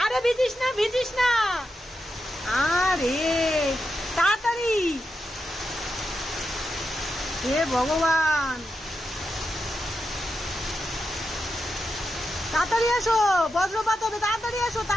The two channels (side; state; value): both; normal; correlation 0.87